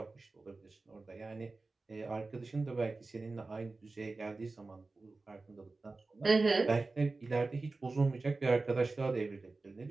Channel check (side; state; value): left; quieter; 3.6 dB